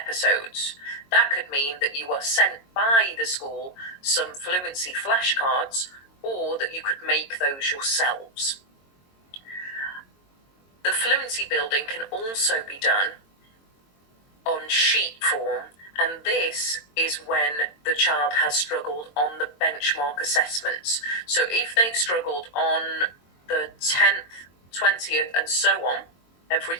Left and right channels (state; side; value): late; right; 22 ms